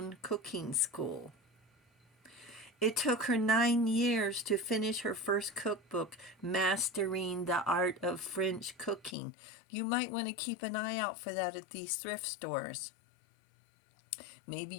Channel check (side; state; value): right; drops out; at 9.2 s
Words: cooking school. It took her 9 years to finish her first cookbook, Mastering the Art of French Cooking. You might want to keep an eye out for that at these thrift stores. Maybe